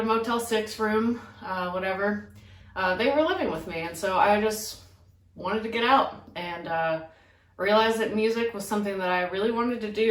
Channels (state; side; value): identical; both; correlation 1.00